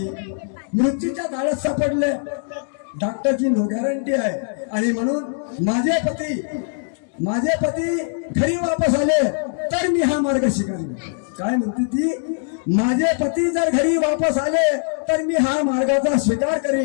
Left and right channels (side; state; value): right; silent; digital silence